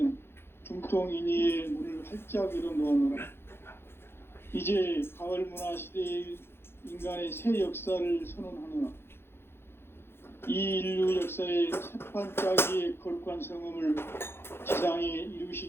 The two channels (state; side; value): late; right; 0.11 ms